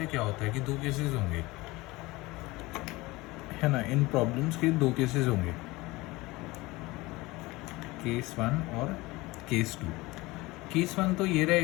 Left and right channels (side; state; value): right; quieter; 21.3 dB